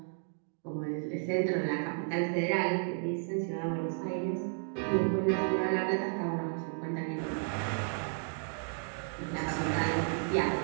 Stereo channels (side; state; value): left; silent; 56 dB below the other